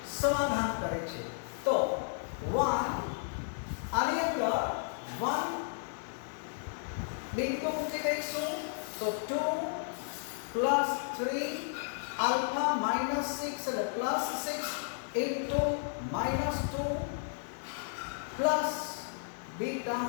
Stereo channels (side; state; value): right; silent; 55 dB below the other